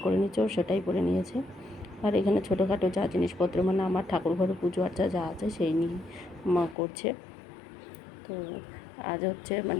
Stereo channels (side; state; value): right; drops out; at 6.8 s